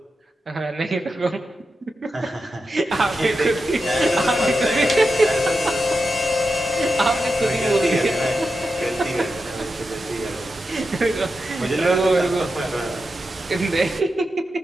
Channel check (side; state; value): both; normal; correlation 0.89